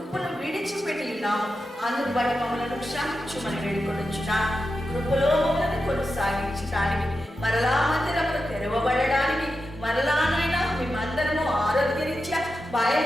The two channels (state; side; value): normal; both; correlation 0.89